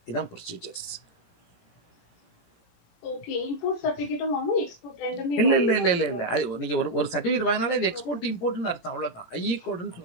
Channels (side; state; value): right; late; 18 ms